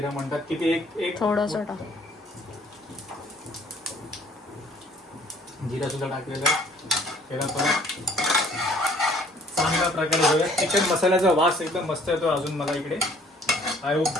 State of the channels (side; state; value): both; normal; correlation 0.57